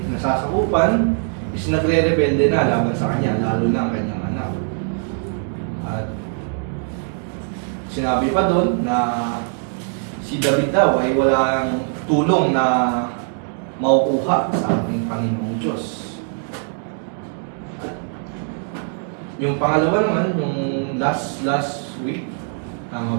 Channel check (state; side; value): silent; left; 55 dB below the other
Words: nasasakupan, is nagre-rebelde na laban sa kanya, lalo na ang kanyang anak. At sinabi pa doon na si David daw ay walang tulong na makukuha sa ating Panginoong Diyos. At yung pangalawa naman, yung last week, tama